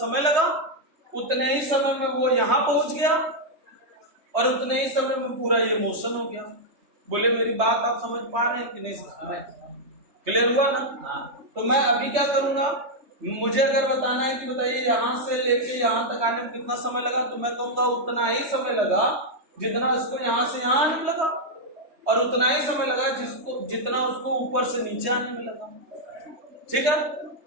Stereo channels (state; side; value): late; left; 3.2 ms